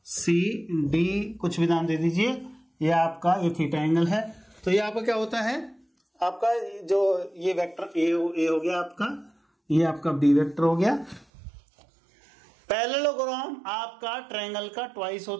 सी डी, कुछ भी नाम दे दीजिए। ये आपका ये थीटा एंगल है। तो ये आपका क्या होता है, आपका जो ये वेक्टर ए हो गया आपका, ये आपका बी वेक्टर हो गया। पैरेललोग्राम आपका ट्रायंगल का ट्वाइस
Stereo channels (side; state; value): left; drops out; at 11.2 s